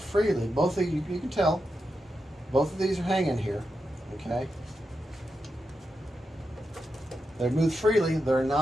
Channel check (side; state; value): both; normal; correlation 0.87